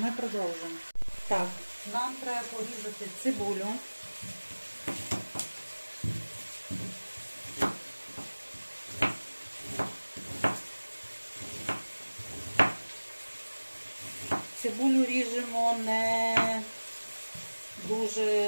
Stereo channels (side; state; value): both; inverted; correlation -1.00